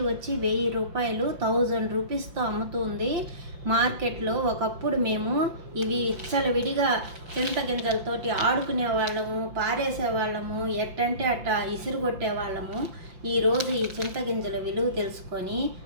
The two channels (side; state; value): left; late; 5.7 ms